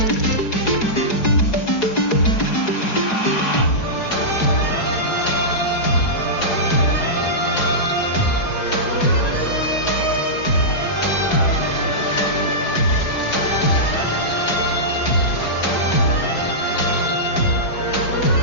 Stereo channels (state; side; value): late; right; 4.8 ms